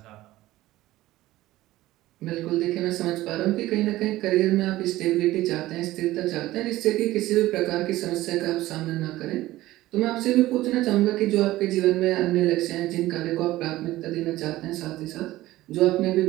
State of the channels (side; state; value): left; quieter; 16.5 dB